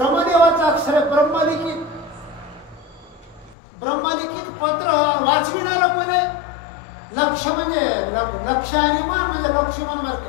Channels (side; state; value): right; drops out; at 3.6 s